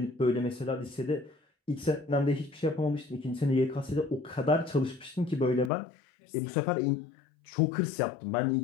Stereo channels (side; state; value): right; drops out; at 5.7 s